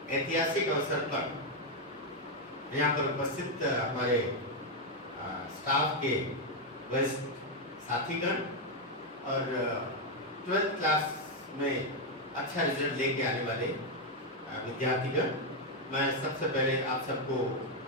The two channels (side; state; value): both; normal; correlation 0.02